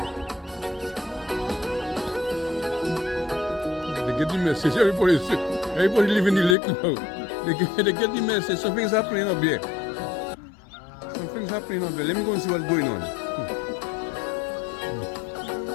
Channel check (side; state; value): right; drops out; at 6.6 s